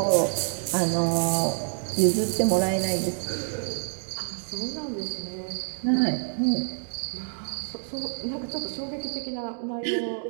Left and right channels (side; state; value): left; silent; digital silence